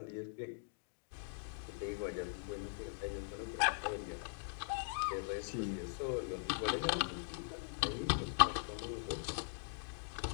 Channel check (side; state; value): right; silent; digital silence